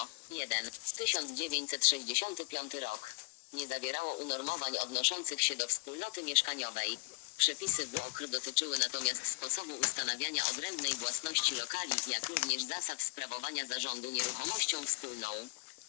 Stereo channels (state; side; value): quieter; right; 32.2 dB